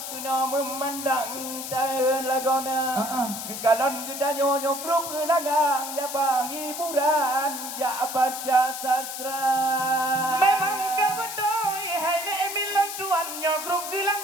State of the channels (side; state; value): left; noise; hiss, 7 dB below the sound